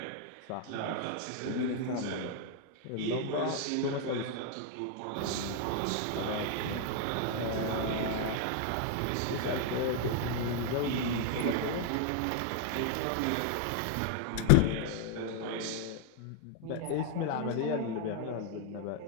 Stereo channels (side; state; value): both; different; correlation 0.00